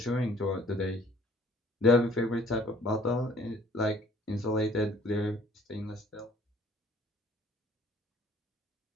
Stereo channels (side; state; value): both; normal; correlation 0.57